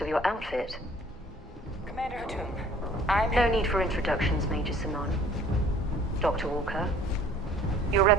of your outfit. Commander Hatoum, I'm... No need for introductions, Major Sanon. Dr. Walker, your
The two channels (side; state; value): both; normal; correlation 0.53